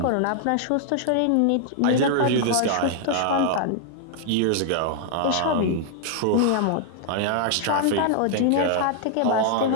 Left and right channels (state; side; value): different; both; correlation -0.01